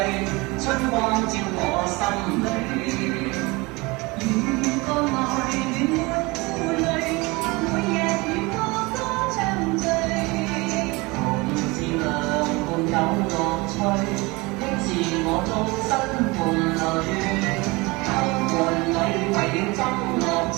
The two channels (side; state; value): left; quieter; 24.5 dB